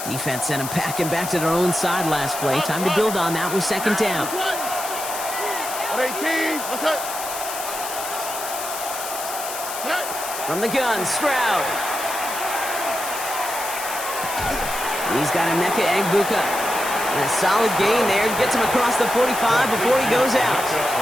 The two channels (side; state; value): left; noise; hiss, 7 dB below the sound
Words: Defense sent him packing back to their own side last play. Time to build on that with second down. 118. What's that? From the gun, Stroud. He's got Emeka Egbuka. And a solid gain there. Gets him across the 45 before he goes out.